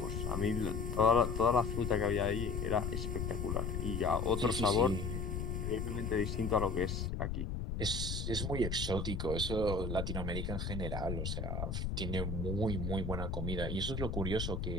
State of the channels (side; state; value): left; noise; rumble, 2 dB below the sound